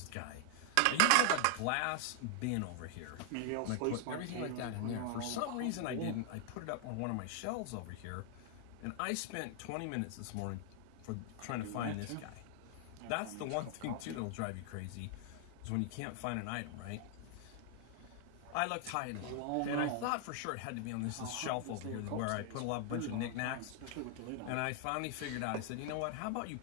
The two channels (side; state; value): both; different; correlation 0.00